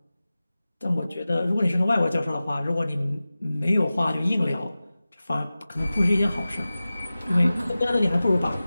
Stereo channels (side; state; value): both; inverted; correlation -0.96